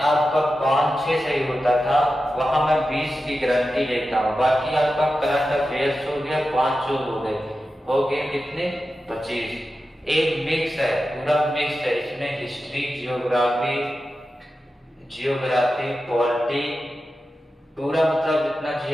5-6 सही होता था, वहां मैं 20 की गारंटी लेता हूँ। बाकी आपका करंट अफेयर्स हो गया, 5 हो गए कितने 25। एक मिक्स है, पूरा मिक्स है। इसमें हिस्ट्री, जियोग्राफी, पॉलिटी, पूरा मतलब जितना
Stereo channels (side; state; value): both; normal; correlation 0.92